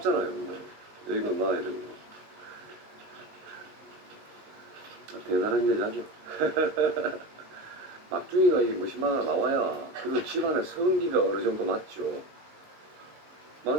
여기는 나 이러는 거. 대단한 여자죠. 막중이가 이게 무심하나 나와야 그리고 집안의 성기가 어느 정도 맞죠.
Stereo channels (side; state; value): left; late; 19 ms